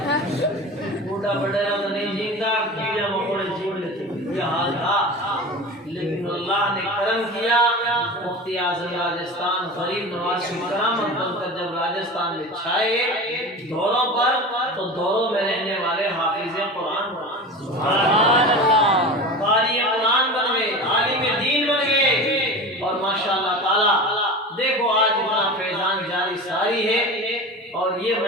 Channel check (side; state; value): both; normal; correlation 0.31